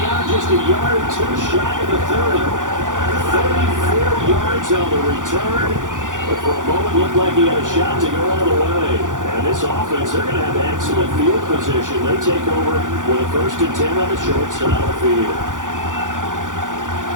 are, just a yard or 2 shy of the 30. 34 yards on the return. But for a moment, looked like he had a shot to go all the way. And this offense, they're going to have excellent field position. They take over with a 1st and 10 on the short side of the field.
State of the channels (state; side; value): late; left; 0.88 ms